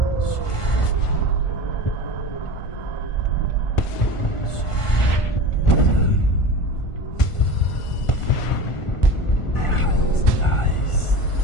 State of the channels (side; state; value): right; late; 1.4 ms